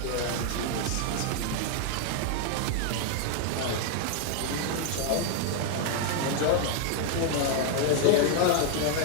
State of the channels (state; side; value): different; both; correlation 0.00